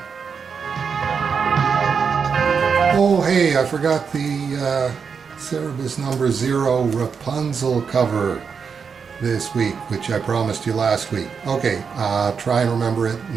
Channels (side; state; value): left; quieter; 6.0 dB